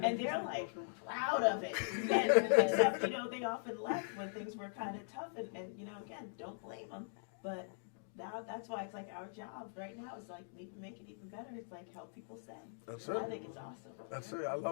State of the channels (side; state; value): right; silent; digital silence